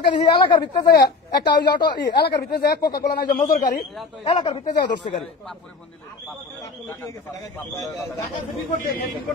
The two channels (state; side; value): quieter; right; 4.3 dB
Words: দেখি এলাকার ভিতরে যায় একটা ওই অটো, এলাকার ভিতরে যায় কোকা কোলা নাই যে মজুর গাড়ি, এলাকার ভিতরে যায় ধরছে গাড়ি।